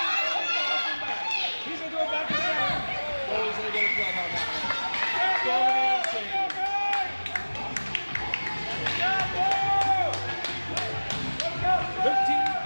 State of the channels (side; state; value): both; inverted; correlation -1.00